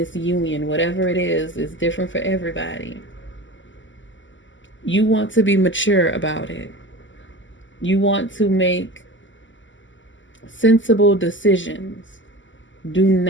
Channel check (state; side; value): late; right; 0.55 ms